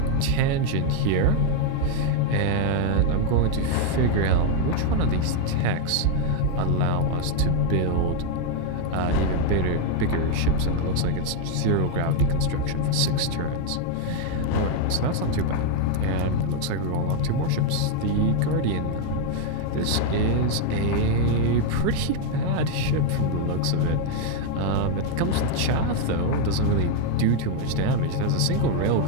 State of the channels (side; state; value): both; different; correlation 0.01